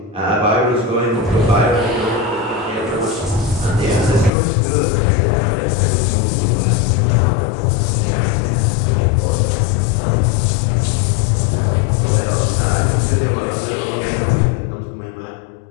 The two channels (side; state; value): right; drops out; at 4.3 s